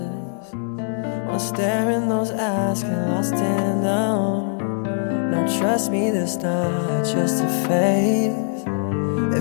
Wanna stare in those eyes, get lost in them. Now trust me, this not just a phase.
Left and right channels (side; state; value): right; silent; digital silence